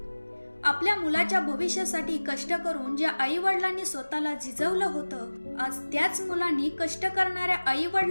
आपल्या मुलाच्या भविष्यासाठी कष्ट करून ज्या आई वडिलांनी स्वतःला झिजवलं होतं, आज त्याच मुलांनी कष्ट करणाऱ्या आई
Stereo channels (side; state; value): both; inverted; correlation -1.00